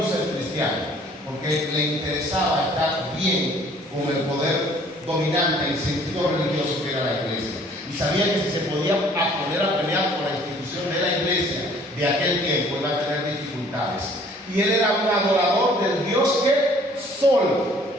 ser cristiano porque le interesaba estar bien con el poder dominante y sentido religioso que era la iglesia. Y sabía que si se podía poner a pelear por la institución de la iglesia de aquel tiempo, iba a tener dificultades. Y él era un adorador del Dios que Sol.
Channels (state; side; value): normal; both; correlation 0.56